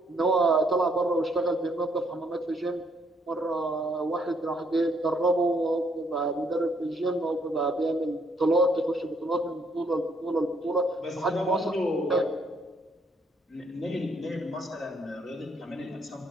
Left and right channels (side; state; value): both; normal; correlation 0.69